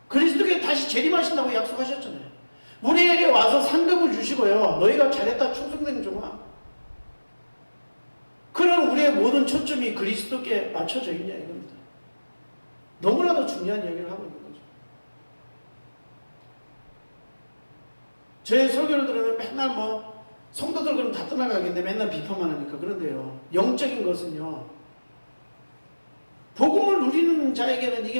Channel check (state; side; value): inverted; both; correlation -1.00